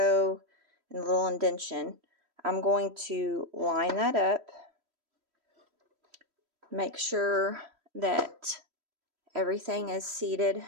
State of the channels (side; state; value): left; late; 3.1 ms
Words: and the little indentation. I'm going to line that up, make sure that everything is seated